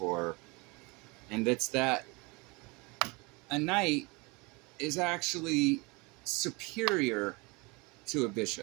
And that's that a knight is actually superior to a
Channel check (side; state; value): left; quieter; 27.1 dB